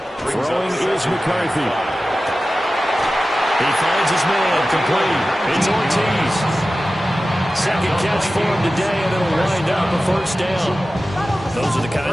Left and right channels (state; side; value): normal; both; correlation 0.95